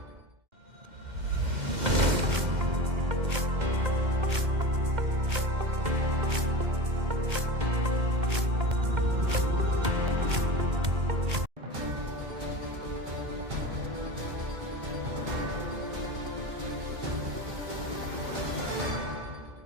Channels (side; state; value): left; late; 2.0 ms